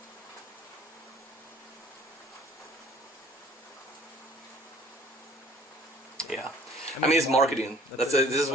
Yeah, I mean, it's marketing. This is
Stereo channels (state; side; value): normal; both; correlation 0.53